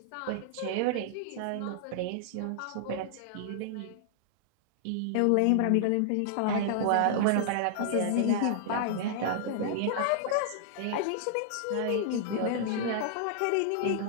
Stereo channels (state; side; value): different; both; correlation -0.01